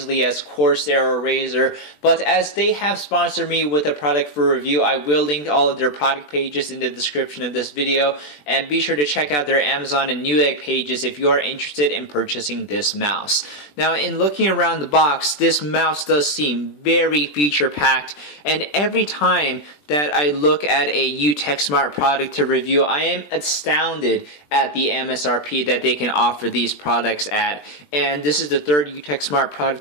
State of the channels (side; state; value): right; late; 20 ms